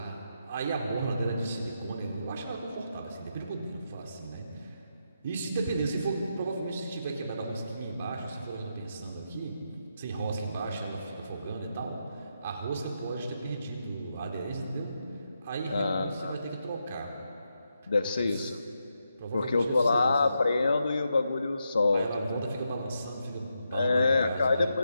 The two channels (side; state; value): both; inverted; correlation -0.84